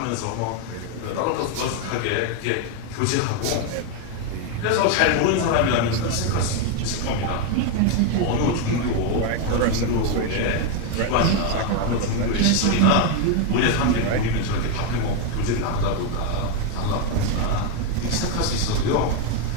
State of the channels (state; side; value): different; both; correlation 0.01